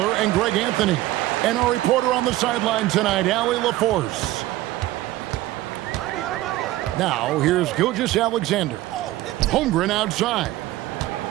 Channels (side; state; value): left; quieter; 16.5 dB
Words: and Greg Anthony. And our reporter on the sideline tonight, Allie LaForce. Now, here's Gilgeous-Alexander. Holmgren outside.